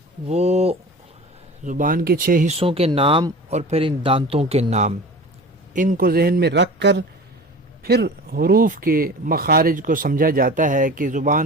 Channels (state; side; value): normal; both; correlation 0.37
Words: وہ زبان کے 6 حصوں کے نام اور پھر ان دانتوں کے نام، ان کو ذہن میں رکھ کر پھر حروف کے مخارج کو سمجھا جاتا ہے کہ